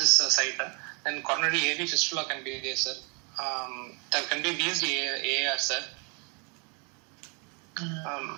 site. Then coronary AV fistula can be there, sir. There can be VSD AR, sir.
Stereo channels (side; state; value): left; quieter; 33.8 dB